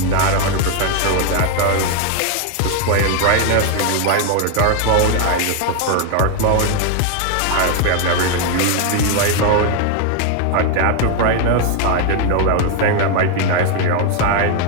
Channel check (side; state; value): both; different; correlation 0.00